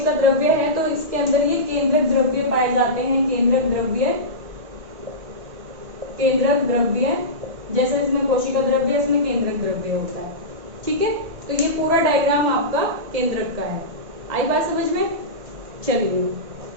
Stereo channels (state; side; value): late; left; 1.6 ms